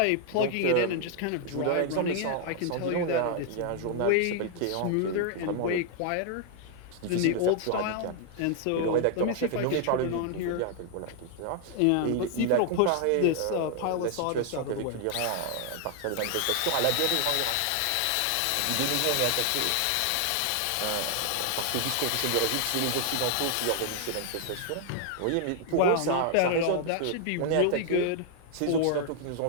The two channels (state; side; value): different; both; correlation 0.00